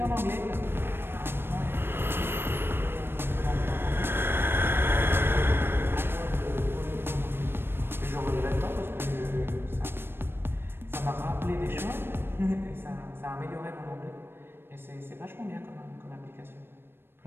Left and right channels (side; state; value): left; late; 0.11 ms